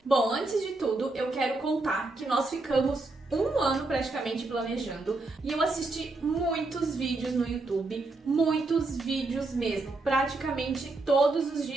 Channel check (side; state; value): left; quieter; 3.2 dB